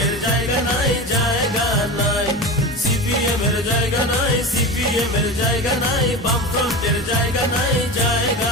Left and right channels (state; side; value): normal; both; correlation 0.26